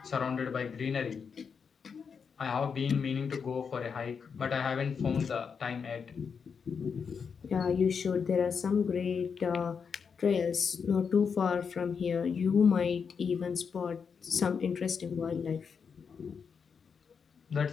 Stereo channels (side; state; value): right; quieter; 6.1 dB